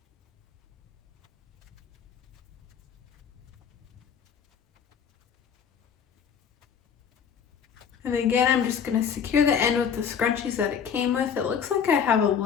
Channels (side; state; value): right; quieter; 7.4 dB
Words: And again, I'm just gonna secure the end with the scrunchies that it came with. It looks like I have a